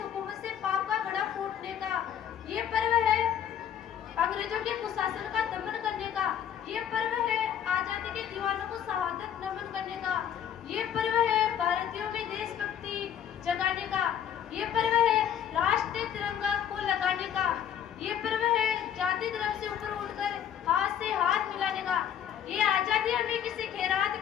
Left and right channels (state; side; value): quieter; right; 9.5 dB